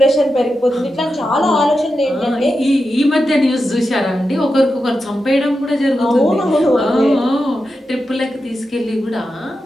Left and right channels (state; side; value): normal; both; correlation 0.89